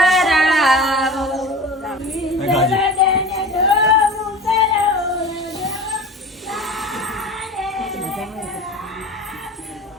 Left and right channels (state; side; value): normal; both; correlation 0.35